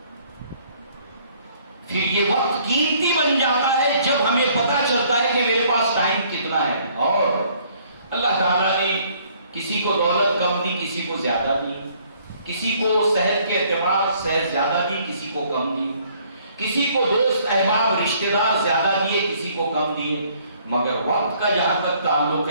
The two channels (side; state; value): both; inverted; correlation -0.62